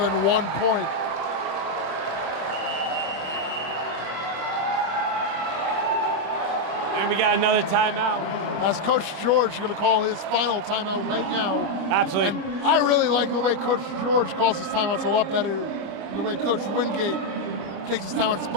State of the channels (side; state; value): left; late; 26 ms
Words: 1 point. And we got another timeout. As Coach George is going to call his final timeout right now. Absolutely. And I really like the way Coach George calls his timeouts, a lot better than the way Coach Wingate takes his timeouts.